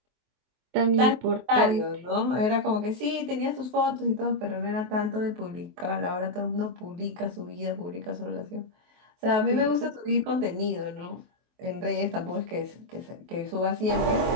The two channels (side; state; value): left; late; 23 ms